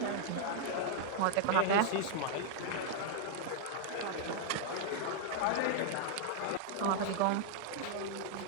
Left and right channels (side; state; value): both; different; correlation -0.01